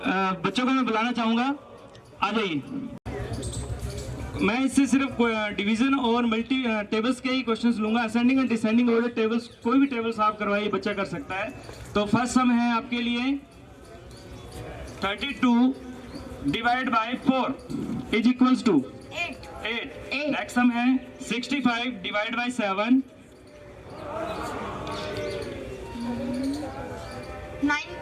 बच्चों को मैं बुलाना चाहूंगा, आ जाइए। मैं इससे सिर्फ डिवीजन और मल्टी टेबल्स के ही क्वेश्चंस लूंगा। Ascending and descending order tables, कोई भी टेबल्स आप करवाइए, बच्चा कर सकता है। तो फर्स्ट सम है आपके लिए 32 divide by 4 is equals to 8। Next sum है 65 divide by 7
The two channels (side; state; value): both; identical; correlation 1.00